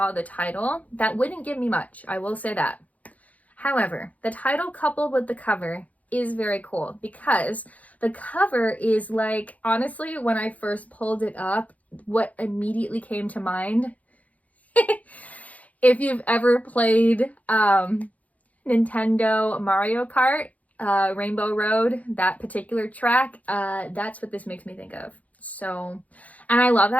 the title, that wouldn't give me much. I will say that. However, the title coupled with the cover is very cool because the cover is like, honestly, when I first pulled it up, what immediately came to mind, if you've ever played Nintendo Mario Kart, Rainbow Road, that particular track, that's what this makes me think of. So, and I love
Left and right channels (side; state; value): right; late; 0.071 ms